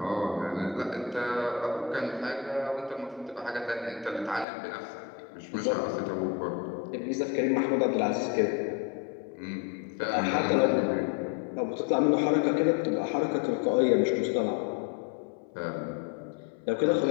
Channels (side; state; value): right; drops out; at 4.5 s